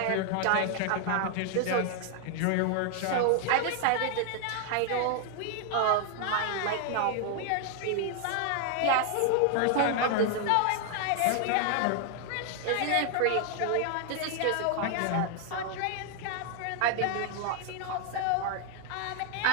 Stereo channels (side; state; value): both; different; correlation 0.00